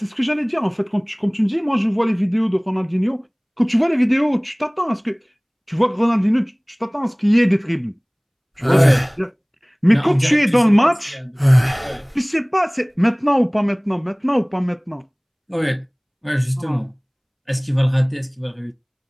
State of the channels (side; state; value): both; identical; correlation 1.00